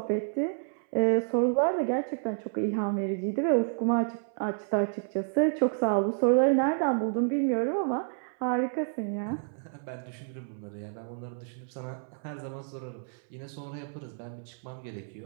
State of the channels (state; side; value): silent; left; 58 dB below the other